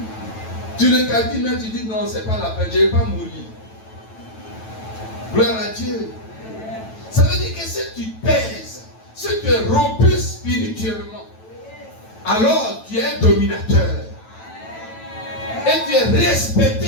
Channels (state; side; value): late; right; 9.1 ms